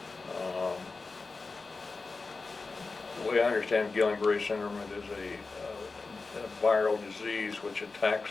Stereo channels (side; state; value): right; quieter; 4.0 dB